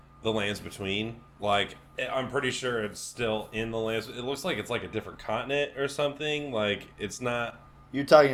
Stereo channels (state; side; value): identical; both; correlation 1.00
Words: the Lands Between. Like, I'm pretty sure it's still in the Lands. It looks like it's like a different continent or something. Like, it's not... You're talking